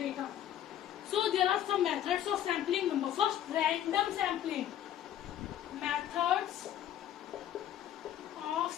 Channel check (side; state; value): right; quieter; 11.3 dB